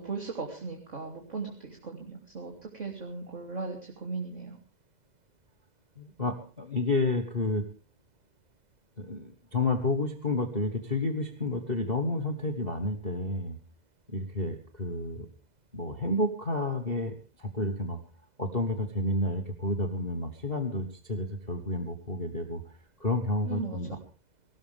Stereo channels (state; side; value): late; left; 2.0 ms